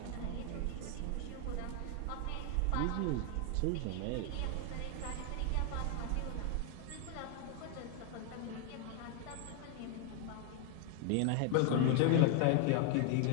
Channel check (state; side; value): different; both; correlation 0.01